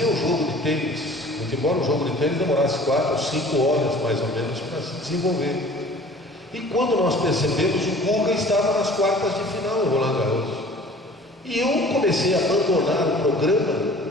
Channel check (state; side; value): normal; both; correlation 0.47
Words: o jogo de tênis, muito embora o jogo de tênis demorasse 4 ou 5 horas mais ou menos para se desenvolver. E quando nós percebemos, o Guga estava nas quartas de final em Roland Garros. E eu comecei a abandonar o programa,